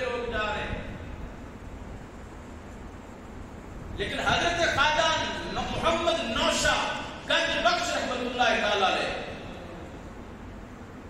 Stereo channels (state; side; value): identical; both; correlation 1.00